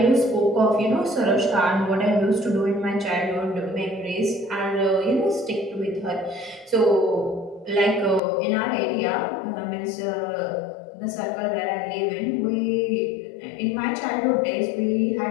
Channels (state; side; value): drops out; right; at 8.2 s